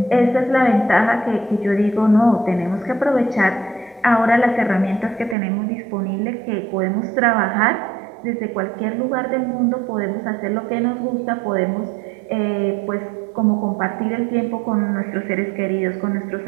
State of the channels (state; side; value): drops out; left; at 5.4 s